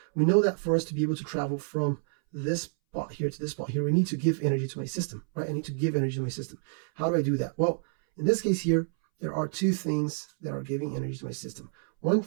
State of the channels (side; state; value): left; silent; 59 dB below the other